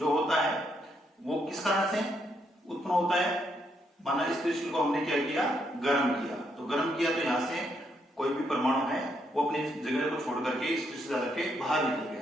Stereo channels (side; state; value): both; normal; correlation 0.76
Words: होता है वो किस कारण से उत्पन्न होता है? माना इस क्रिस्टल को हमने क्या किया? गर्म किया। तो गर्म किया तो यहां से कोई भी परमाणु है वो अपनी जगह को छोड़ करके इस क्रिस्टल जाल के बाहर निकल